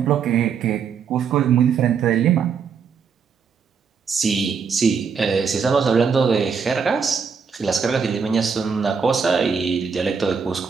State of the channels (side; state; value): left; quieter; 6.1 dB